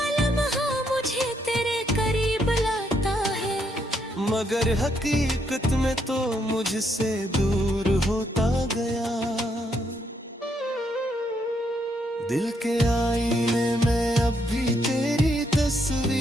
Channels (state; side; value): normal; both; correlation 0.75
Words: लम्हा मुझे तेरे करीब लाता है, मगर हकीकत में तो मुझसे दूर होता गया। दिल के आईने में अब भी तेरी